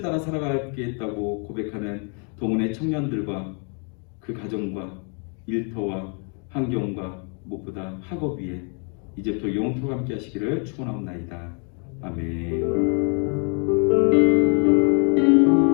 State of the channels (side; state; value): right; quieter; 39.3 dB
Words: 살아가겠다고 고백하는 동원의 청년들과 그 가정과 일터와 환경과 무엇보다 학업 위에 이제부터 영토가 함께 하시기를 축원하옵나이다.